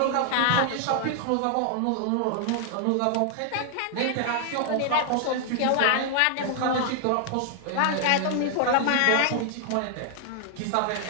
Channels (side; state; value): both; different; correlation 0.00